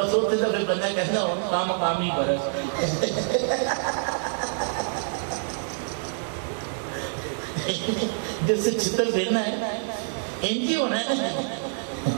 ہوتے تھا پھر بندہ کہتا ہوں کامی برس جس سے چھتر پھرنا ہے انجی ہونا ہے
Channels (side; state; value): left; silent; digital silence